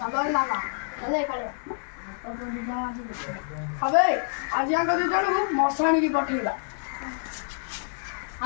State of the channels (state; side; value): silent; right; digital silence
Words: ବାବା ଚାଲେ କାଳେ ଏବେ ଆଜି ଆଙ୍କ 2 ଜଣକୁ ମଶାଣିକି ପଠେଇବା।